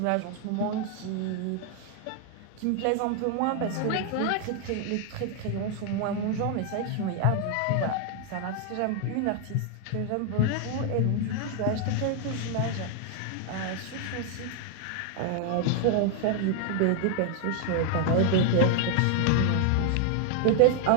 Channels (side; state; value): both; different; correlation 0.00